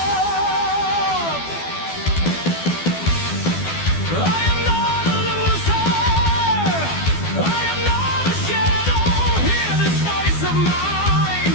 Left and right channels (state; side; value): late; right; 12 ms